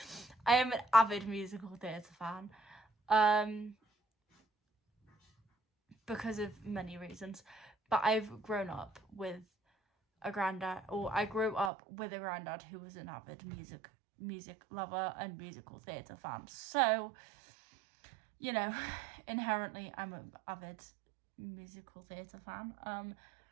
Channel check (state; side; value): drops out; left; at 11.7 s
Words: am an avid musical theatre fan because of many reasons, but I've grown up with a granddad, or I grew up with a granddad who was an avid music lover and musical theatre fan, so you know, inherently I'm an avid musical theatre fan.